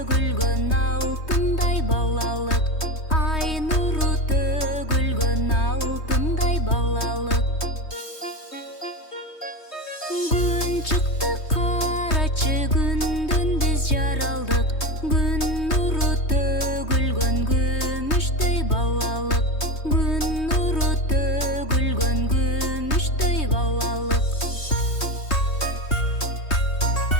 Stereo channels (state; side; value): late; right; 3.2 ms